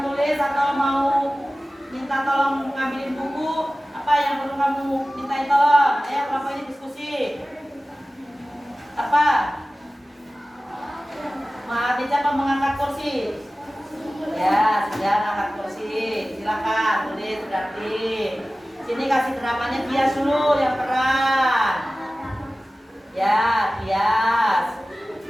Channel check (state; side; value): normal; both; correlation 0.96